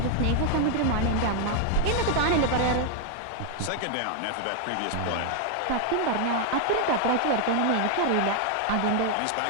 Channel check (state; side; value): different; both; correlation 0.00